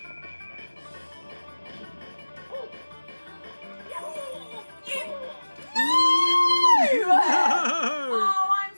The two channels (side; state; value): both; inverted; correlation -1.00